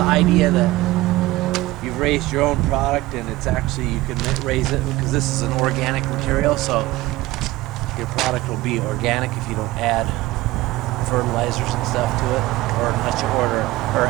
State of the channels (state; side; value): quieter; left; 18.2 dB